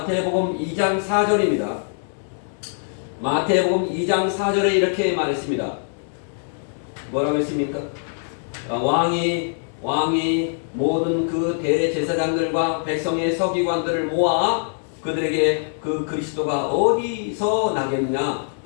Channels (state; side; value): silent; right; digital silence